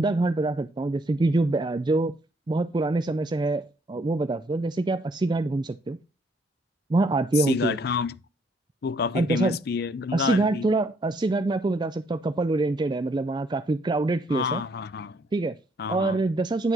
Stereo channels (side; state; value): both; normal; correlation 0.68